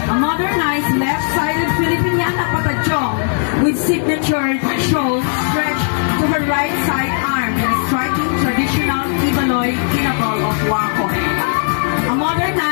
A modernized left-sided Filipiniana patajong with signature shows stretched to her right side arm in a striking traditional Ibaloy kinabal of Wakon. A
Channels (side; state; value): right; silent; 68 dB below the other